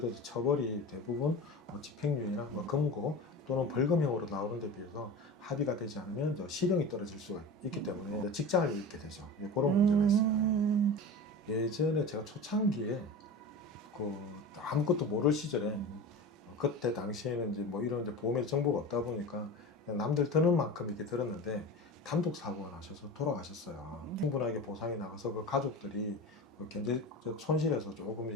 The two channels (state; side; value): normal; both; correlation 0.30